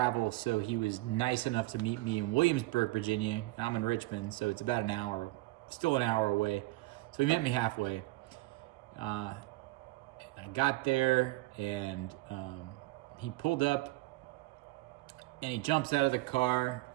so he was nice enough to meet me in Williamsburg, Virginia. I'm in Richmond, so it's about still an hour away. So he met me halfway. I got there, and he pulled up, and he jumps out of the car,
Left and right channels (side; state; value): left; quieter; 19.8 dB